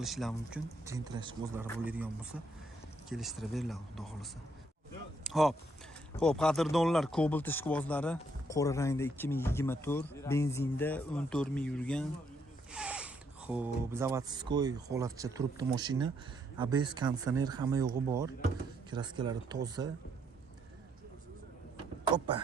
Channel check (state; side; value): normal; both; correlation 0.73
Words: mumkin. Gentrash o'zlari bo'ladigan bo'lsa, kelishtirib beriladi, xudo xolasa. Xo'p. Xo'p, qadrdonlar, Cobalt ishqibozlari qora rangda 2024, benzinda 14 ming yurgan. Xo'p, zavodskoy holatcha turibdi mashina. ABS konditsioner hamma yo'g'i bor. Kraskalari toza. Hoppa.